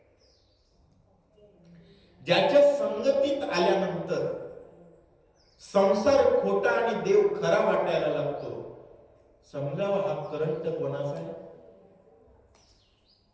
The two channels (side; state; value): both; identical; correlation 1.00